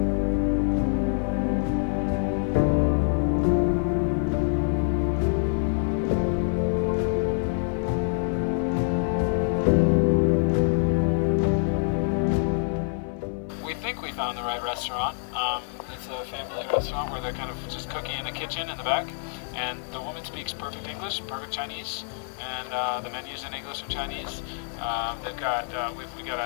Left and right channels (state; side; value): silent; right; 55 dB below the other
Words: We found the right restaurant. It's a family restaurant where they're kind of just cooking in a kitchen in the back, and the woman speaks perfect English, perfect Chinese, and the menu's in English and Chinese. They've got we got